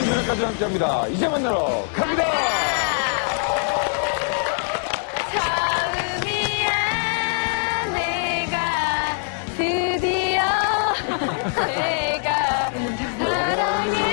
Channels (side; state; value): right; silent; 64 dB below the other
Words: 무대까지 함께합니다. 이제 만나러 갑니다. 드디어 내가